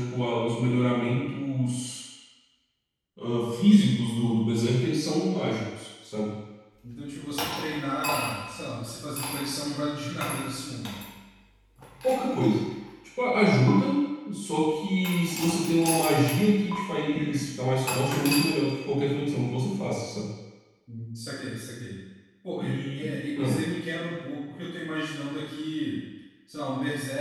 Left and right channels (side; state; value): both; identical; correlation 1.00